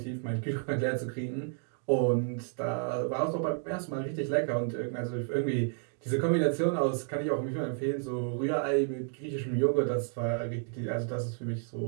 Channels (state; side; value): silent; left; 57 dB below the other